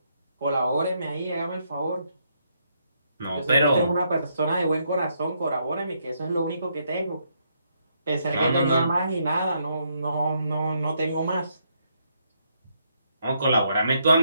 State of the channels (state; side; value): inverted; both; correlation -0.75